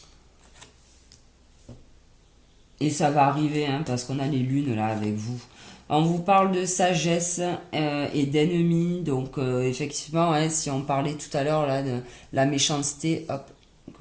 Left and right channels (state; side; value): identical; both; correlation 1.00